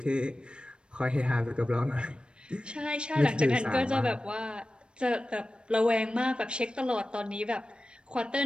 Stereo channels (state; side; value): late; left; 0.055 ms